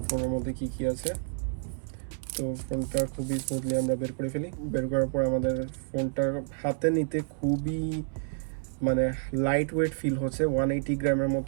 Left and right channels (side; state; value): left; silent; 58 dB below the other